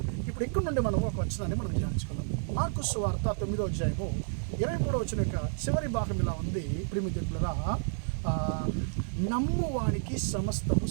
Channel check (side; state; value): left; silent; digital silence